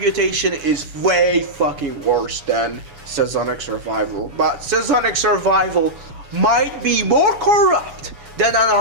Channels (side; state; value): left; late; 7.1 ms